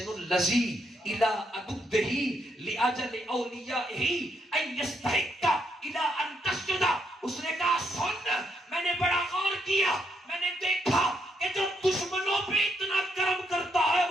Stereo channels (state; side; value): normal; both; correlation 0.77